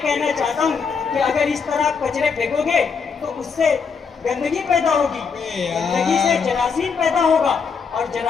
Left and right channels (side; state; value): right; quieter; 5.8 dB